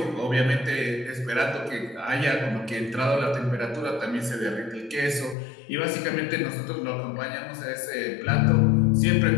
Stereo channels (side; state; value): right; drops out; at 5.4 s